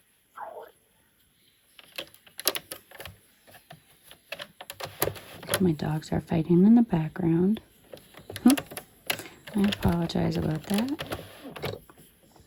My dogs are fighting in the background. I apologize about that.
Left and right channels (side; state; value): both; identical; correlation 1.00